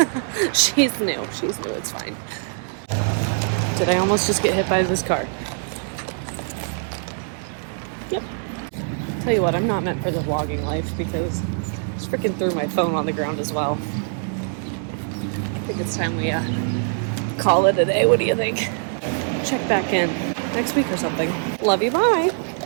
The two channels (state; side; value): silent; left; 63 dB below the other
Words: She's new. It's fine. Did I almost just get hit by this car? Yep. Tell you what, I'm not meant for the vlogging life because I just freaking threw my phone on the ground as well. I think it's time we call it a day. What do you think? Check back in next week or something. Love you. Bye.